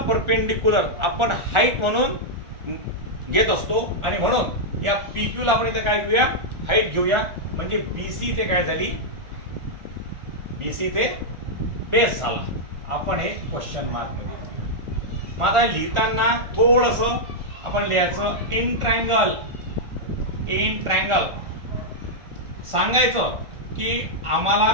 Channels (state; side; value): late; left; 1.4 ms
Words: परपेंडिक्युलर आपण हाईट म्हणून घेत असतो आणि म्हणून या PQ ला आपण इथे काय घेऊया? हाईट घेऊया. म्हणजे BC ते काय झाली? BC ते बेस झाला. आपण हे क्वेश्चन मार्क मध्ये घेऊया. माझा लिहिताना थोडस आपण लिहायचं इन ट्रायंगल सांगायचं की